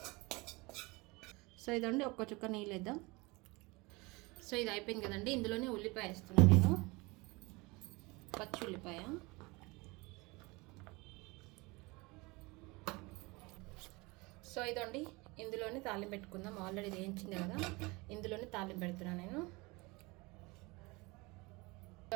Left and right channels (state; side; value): quieter; left; 24.9 dB